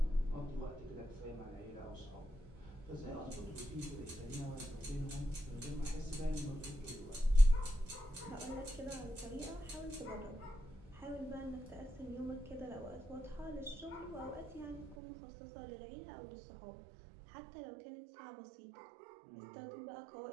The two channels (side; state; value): left; drops out; at 15.0 s